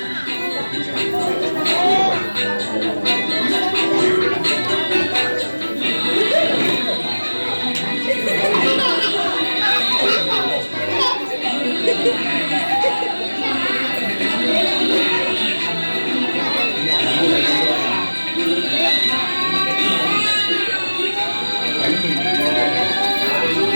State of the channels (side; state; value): both; inverted; correlation -1.00